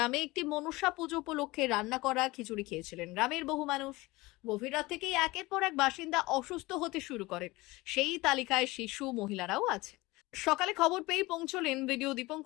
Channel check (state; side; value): quieter; right; 21.1 dB